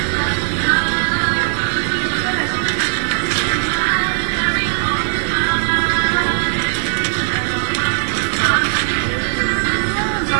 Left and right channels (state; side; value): silent; left; 67 dB below the other